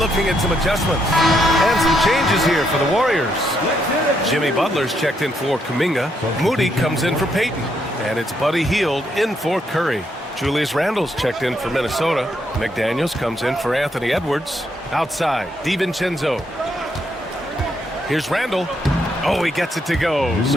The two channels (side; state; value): both; normal; correlation 0.76